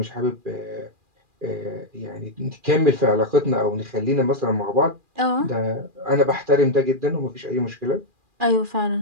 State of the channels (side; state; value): left; late; 2.4 ms